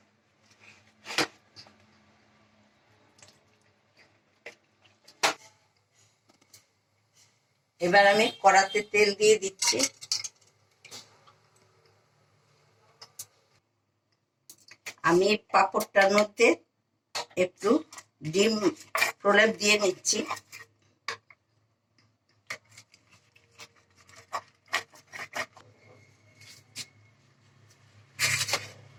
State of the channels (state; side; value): identical; both; correlation 1.00